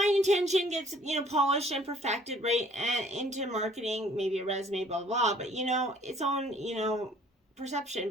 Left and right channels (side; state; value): both; normal; correlation 0.57